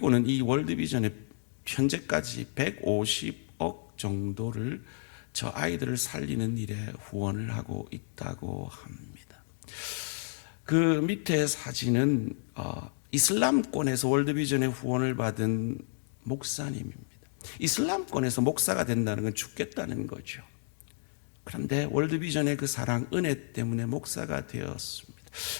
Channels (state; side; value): silent; right; digital silence